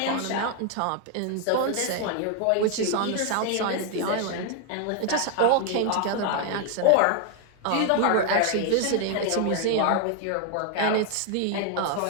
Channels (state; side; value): different; both; correlation 0.00